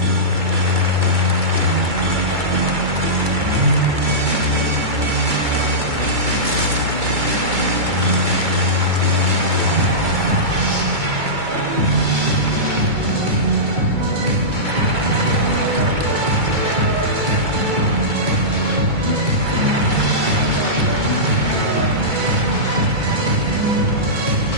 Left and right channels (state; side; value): late; left; 2.2 ms